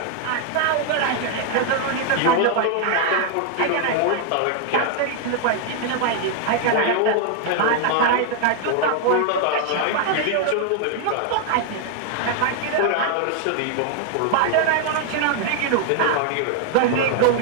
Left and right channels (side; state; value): both; different; correlation 0.00